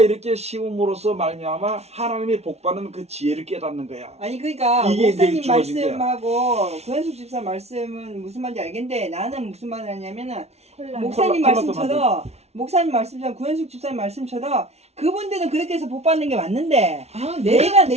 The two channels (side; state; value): left; late; 0.31 ms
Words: 이렇게 심음으로써 말미암아 하나님이 복받는 그 지혜를 깨닫는 거야. 아니 그러니까 이게 이제 목사님 주어진 거야. 말씀하고 구현숙 집사 말씀은 무슨 말인지 알겠는데 나는 무슨 말을 하냐면은 콜라. 목사님 콜라 말씀처럼 목사님 말씀처럼 구현숙 집사님 말씀처럼 그분들은 그렇게 해서 복 받는 게 맞는데 아, 내가 내가